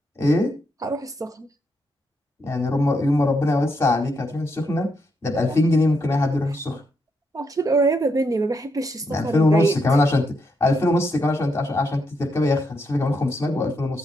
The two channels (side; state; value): both; normal; correlation 0.80